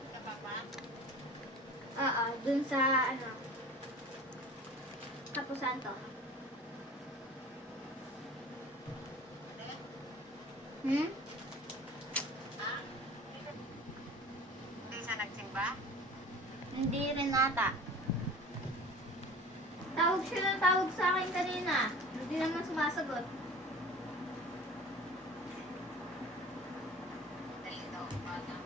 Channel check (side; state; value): both; normal; correlation 0.41